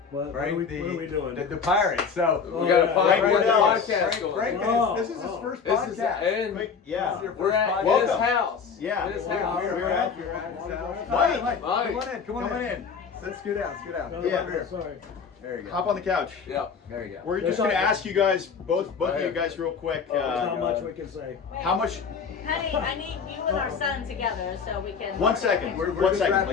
What Frank, are we doing? The Pirates. So Oh, We got a yeah. Frank Frank Wardell. podcast going. Frank, Oh, this is his oh. first This is podcast. and This Yeah. is your we're first at podcast. his house. Yeah. In his Yeah, house. we're at his house. Mike. Mike, come on Mike. in. Come on in. Let's scoot out. Scoot out. No, Come Yeah. over here. Sorry. There you go. Hop on the couch. Yeah. There you go. We're There's just gonna not- ask you guys, both Right of you here. guys, real quick. There's not much we can say. How much? Honey, I need you and our son together so we can. 1 second. We're 1 just second. wrapping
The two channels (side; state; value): right; quieter; 5.9 dB